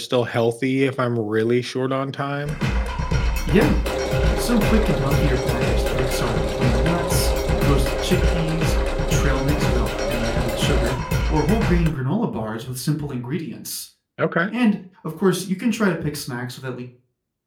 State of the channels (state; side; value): identical; both; correlation 1.00